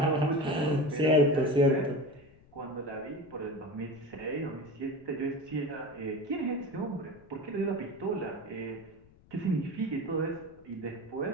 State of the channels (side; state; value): left; noise; rumble, 26 dB below the sound